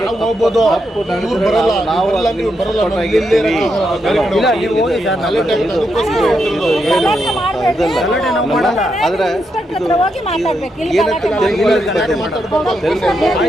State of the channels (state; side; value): normal; both; correlation 0.82